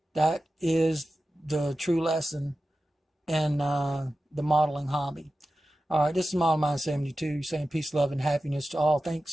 That is the true lesson in the modeling hobby. All right, this is MODELMIND72 saying peace, love, and happiness to all.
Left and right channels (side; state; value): both; normal; correlation 0.94